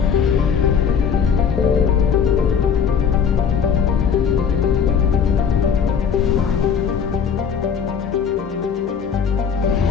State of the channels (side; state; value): right; quieter; 7.0 dB